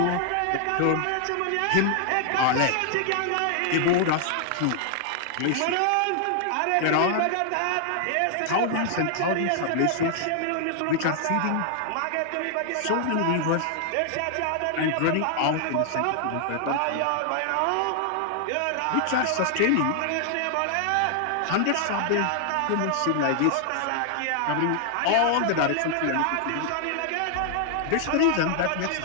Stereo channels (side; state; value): both; different; correlation 0.00